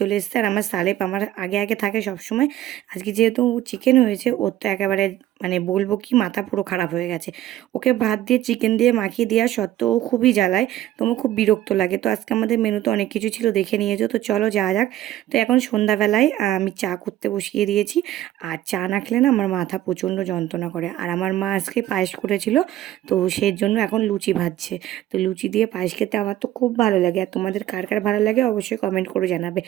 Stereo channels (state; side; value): quieter; left; 13.5 dB